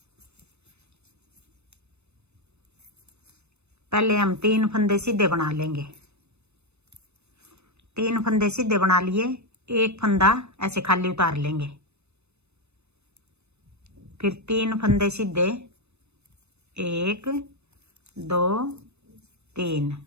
पहले हम 3 फंदे सीधे बना लेंगे। 3 फंदे सीधे बना लिए, एक फंदा ऐसे खाली उतार लेंगे। फिर 3 फंदे सीधे, 1 2 3।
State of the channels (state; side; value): late; left; 0.81 ms